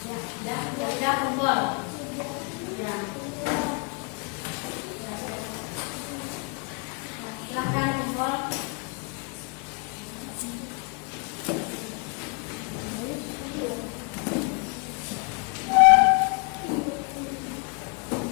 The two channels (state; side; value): quieter; right; 34.7 dB